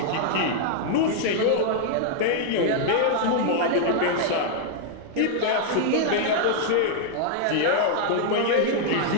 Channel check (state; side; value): different; both; correlation -0.01